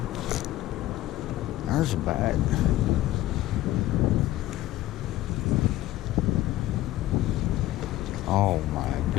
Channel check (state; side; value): quieter; right; 15.2 dB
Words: There's a bite. Oh my